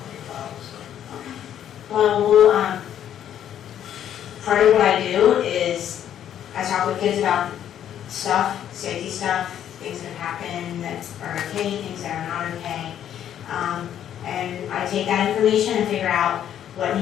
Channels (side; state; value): right; quieter; 10.3 dB